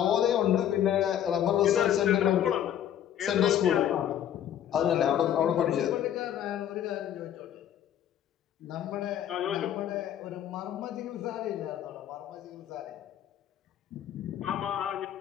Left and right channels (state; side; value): quieter; right; 10.4 dB